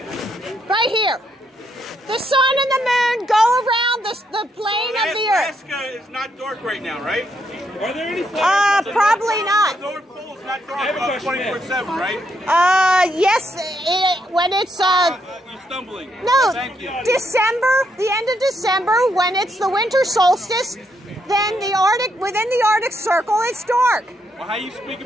Right here. The sun and the moon go around the plane of the Earth. Alaska is not dark right now, right? Are there any flares? Probably not. The North Pole is not dark 24/7, right? Yes, when it's you're stumbling. No, Thank you. December, the end of December, when it's the winter solstice, then within the Arctic Circle, it's dark. Well, how are you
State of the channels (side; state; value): both; normal; correlation 0.77